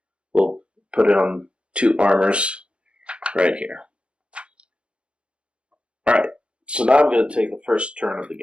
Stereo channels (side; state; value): left; late; 0.058 ms